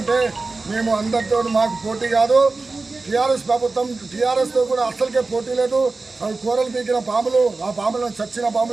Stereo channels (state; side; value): quieter; left; 3.6 dB